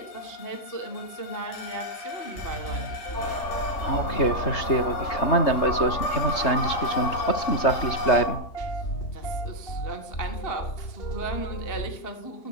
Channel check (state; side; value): late; right; 3.3 ms